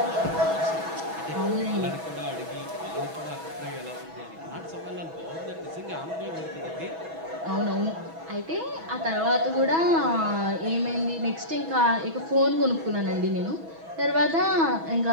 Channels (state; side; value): late; left; 6.1 ms